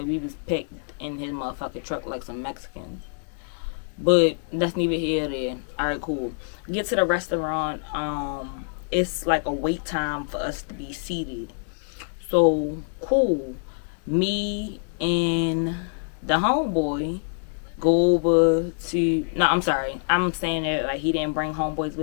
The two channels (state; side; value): silent; right; digital silence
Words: we was packed in his motherfucking truck like some Mexicans. But that's neither here nor there. Alright, cool. Get to the restaurant. It's like a wait time for us to be seated. So cool. Me and the homeboy go over to, no, I'm sorry, I'm saying that like he didn't bring homeboys